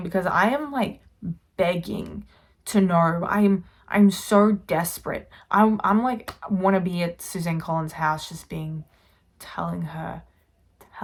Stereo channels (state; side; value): identical; both; correlation 1.00